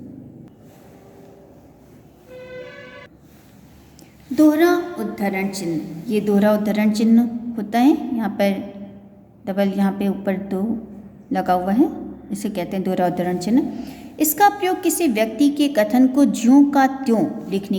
दोहरा उद्धरण चिन्ह, ये दोहरा उद्धरण चिन्ह होता है। यहाँ पर डबल, यहाँ पे ऊपर दो लगा हुआ है, इसे कहते हैं दोहरा उद्धरण चिन्ह। इसका प्रयोग किसी व्यक्ति के कथन को ज्यों का त्यों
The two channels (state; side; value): identical; both; correlation 1.00